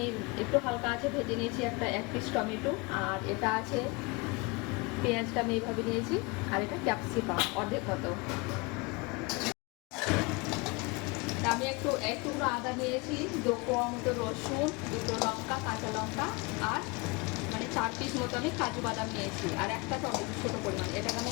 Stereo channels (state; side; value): quieter; right; 26.9 dB